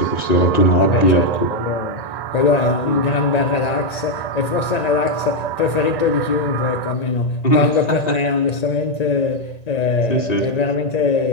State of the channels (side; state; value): right; late; 1.9 ms